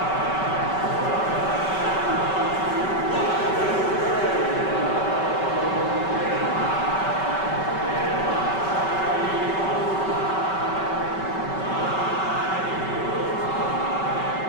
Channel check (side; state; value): right; late; 5.2 ms